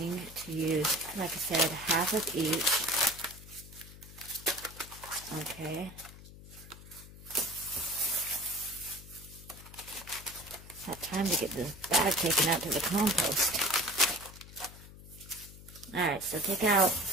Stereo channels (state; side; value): noise; left; hum, 17 dB below the sound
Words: to use, like I said, half of each. Okay. It's that time to get this bag taken out to the compost. Alright, so take out